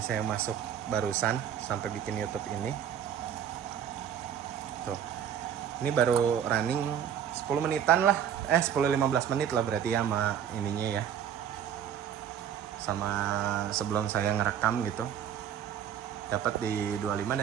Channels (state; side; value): quieter; left; 9.1 dB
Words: masuk barusan sampai bikin YouTube ini. Tuh. Ini baru running 10 menitan lah. 10-15 menit lah berarti ya sama ininya ya. Sama sebelum saya ngerekam gitu. Dapat di 25